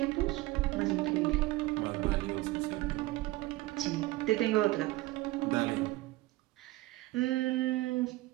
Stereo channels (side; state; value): left; quieter; 19.1 dB